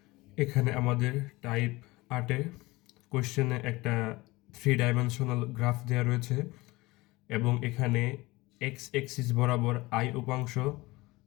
এখানে আমাদের টাইপ 8-এ কোশ্চেনে একটা 3 ডাইমেনশনাল গ্রাফ দেওয়া রয়েছে এবং এখানে এক্স এক্সিস বরাবর আই উপাংশ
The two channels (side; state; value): right; quieter; 21.3 dB